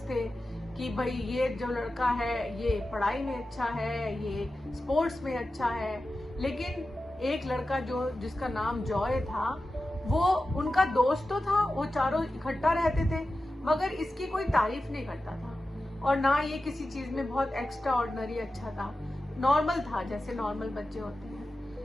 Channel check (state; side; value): normal; both; correlation 0.93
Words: थे कि भाई ये जो लड़का है ये पढ़ाई में अच्छा है, ये स्पोर्ट्स में अच्छा है। लेकिन एक लड़का जिसका नाम जॉय था, वो उनका दोस्त तो था, वो चारों इकट्ठा रहते थे, मगर इसकी कोई तारीफ नहीं करता था। और ना ये किसी चीज में बहुत एक्स्ट्रा ऑर्डिनरी अच्छा था, नॉर्मल था, जैसे नॉर्मल बच्चे होते